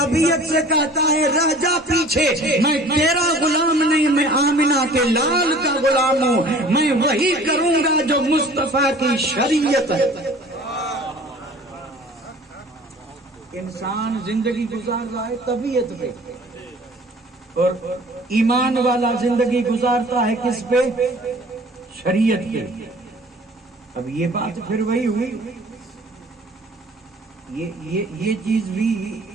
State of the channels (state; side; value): normal; both; correlation 0.48